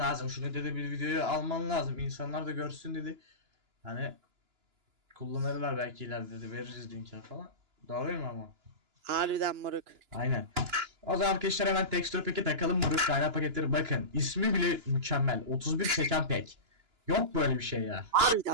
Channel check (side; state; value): left; late; 2.9 ms